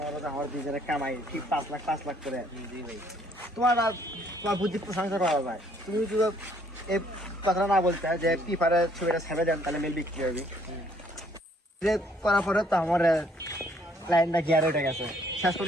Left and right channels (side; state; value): both; normal; correlation 0.64